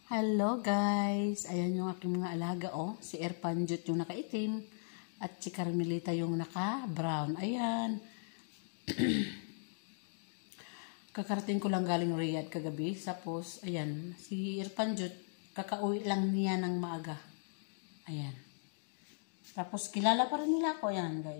Hello guys! Ayan yung aking mga alaga Si Erpanjut yung nakaitim at si Carmelita yung naka-brown. Ayan. Kakarating ko lang galing Riyadh kagabi. Tapos, ayan. Si Erpanjut, kakauwi lang niya ng maaga. Ayan. Tapos, kilala pa rin nila ako. Ayan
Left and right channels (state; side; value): silent; right; digital silence